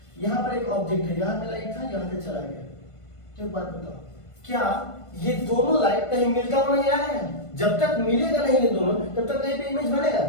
यहाँ पर एक ऑब्जेक्ट है, यहाँ पे लाइट था, यहाँ से चला गया। तो एक बात बताओ, क्या ये दोनों लाइट कहीं मिलता हुआ नजर आ रहा है? जब तक मिलेगा नहीं ये दोनों, तब तक कहीं पे इमेज बनेगा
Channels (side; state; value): right; late; 1.5 ms